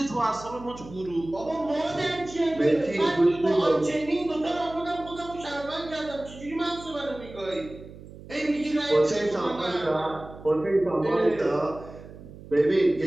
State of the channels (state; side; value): noise; right; hum, 17 dB below the sound